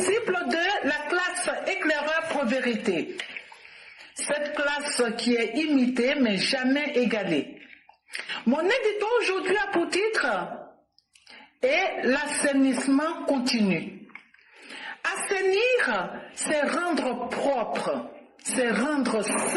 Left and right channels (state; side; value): identical; both; correlation 1.00